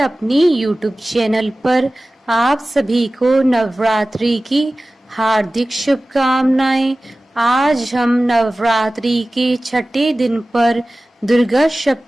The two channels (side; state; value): both; normal; correlation 0.97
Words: यूट्यूब चैनल पर। आप सभी को नवरात्रि की हार्दिक शुभकामनाएं। आज हम नवरात्रि के छठे दिन पर दुर्गा